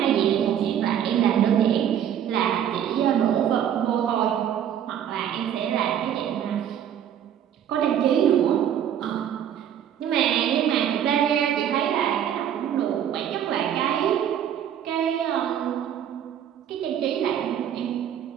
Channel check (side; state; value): left; quieter; 9.7 dB